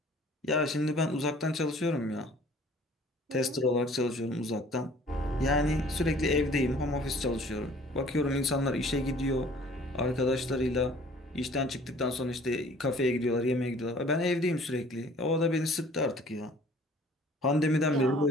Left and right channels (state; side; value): normal; both; correlation 0.52